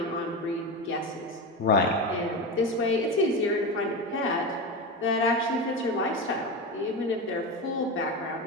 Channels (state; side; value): normal; both; correlation 0.20